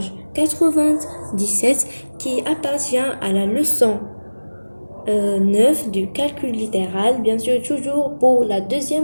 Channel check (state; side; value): inverted; both; correlation -1.00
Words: 97 qui appartient à la leçon 9 du calcul littéral, bien sûr toujours pour la